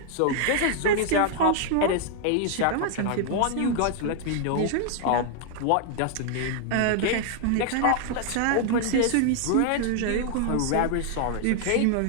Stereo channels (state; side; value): different; both; correlation 0.00